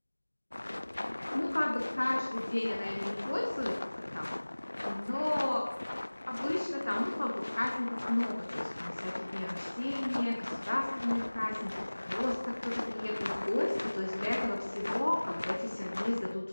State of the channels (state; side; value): inverted; both; correlation -1.00